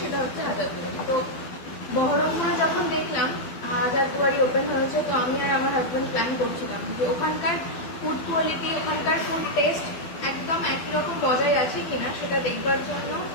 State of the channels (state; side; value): late; right; 12 ms